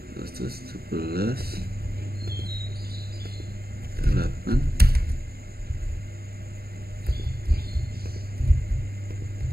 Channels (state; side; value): late; left; 0.45 ms